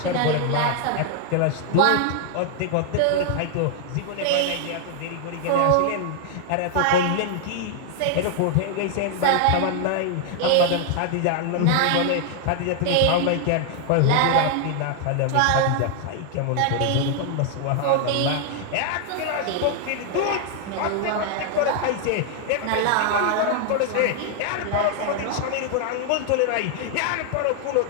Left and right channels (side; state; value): both; different; correlation 0.00